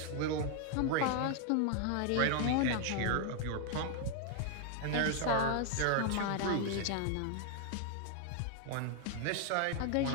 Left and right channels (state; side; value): different; both; correlation 0.00